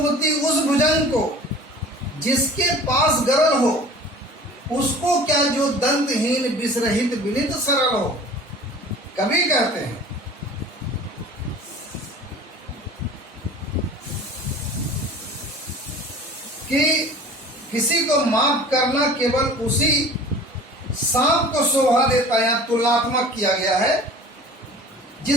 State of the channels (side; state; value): both; normal; correlation 0.43